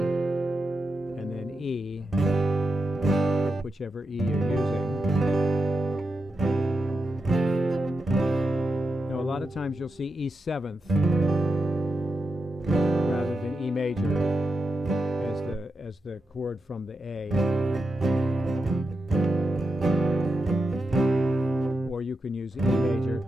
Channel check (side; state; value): both; normal; correlation 0.87